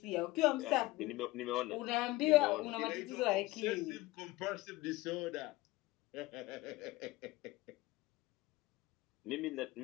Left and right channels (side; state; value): right; quieter; 19.4 dB